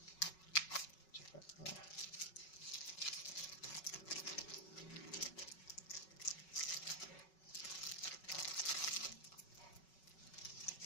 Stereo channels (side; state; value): right; late; 5.4 ms